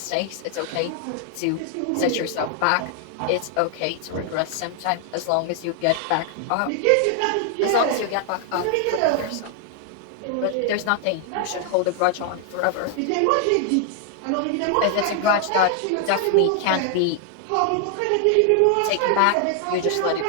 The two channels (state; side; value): different; both; correlation 0.00